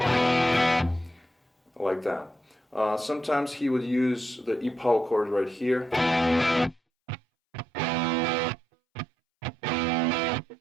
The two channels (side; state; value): left; drops out; at 6.8 s